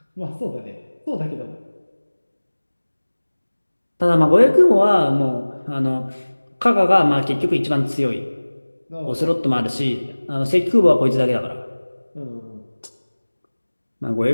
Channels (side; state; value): both; inverted; correlation -1.00